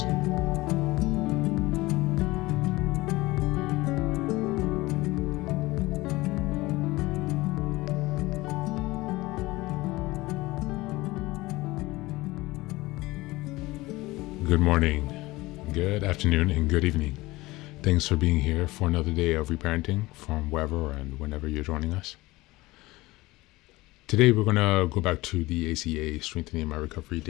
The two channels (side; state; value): right; quieter; 20.0 dB